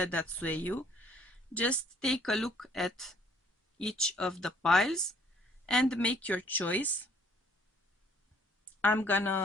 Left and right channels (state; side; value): normal; both; correlation 0.60